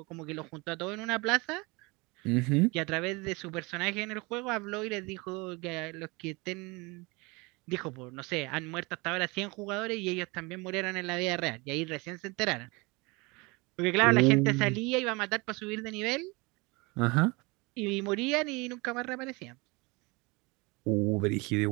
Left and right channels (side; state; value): left; quieter; 26.0 dB